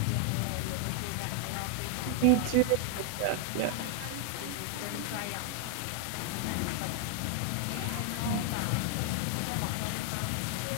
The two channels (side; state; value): both; different; correlation 0.00